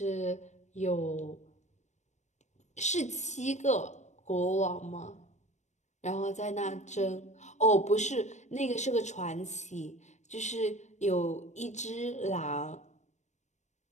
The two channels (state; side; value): late; right; 0.34 ms